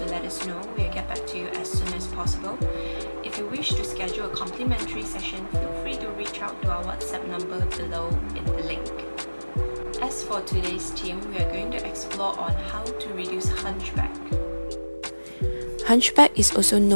let us know. We'll get back to you as soon as possible. If you wish to schedule a complimentary session, feel free to reach out to our WhatsApp number below in the link. As for today's theme, we are going to explore on how to reduce hunchback. Hunchback is also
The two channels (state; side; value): inverted; both; correlation -1.00